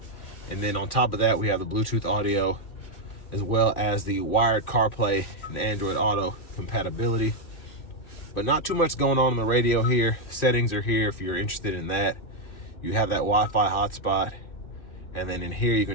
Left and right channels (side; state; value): right; late; 2.4 ms